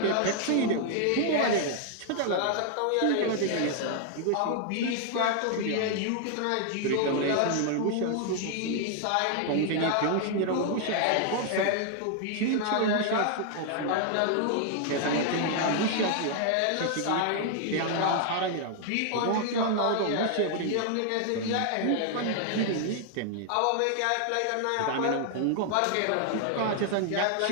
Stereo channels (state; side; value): different; both; correlation 0.00